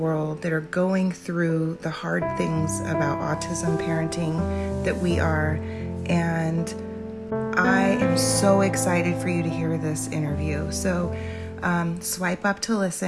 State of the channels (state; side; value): identical; both; correlation 1.00